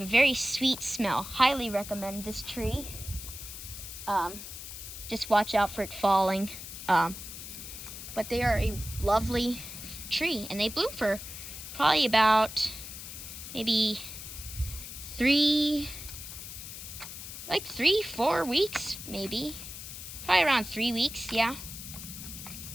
a very sweet smell. Highly recommend this tree. Just watch out for it falling. But they are a lovely tree, and they bloom for probably about maybe 3, 4 weeks, maybe. Probably around 3 weeks, yeah.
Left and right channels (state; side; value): noise; left; hiss, 10 dB below the sound